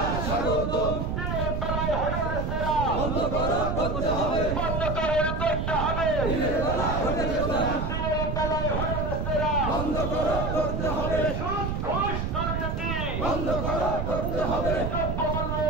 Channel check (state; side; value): noise; right; rumble, 1 dB below the sound